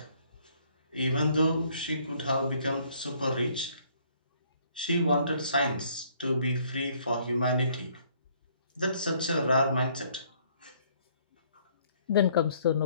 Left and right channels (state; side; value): inverted; both; correlation -0.63